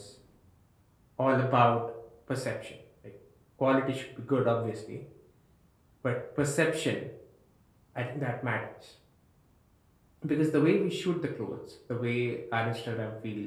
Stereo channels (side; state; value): both; identical; correlation 1.00